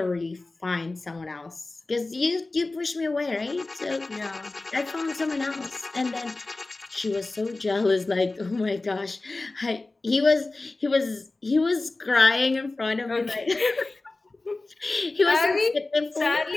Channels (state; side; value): quieter; right; 3.2 dB